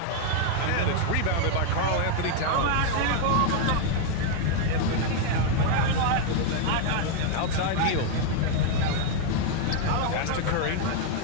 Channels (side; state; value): both; different; correlation 0.00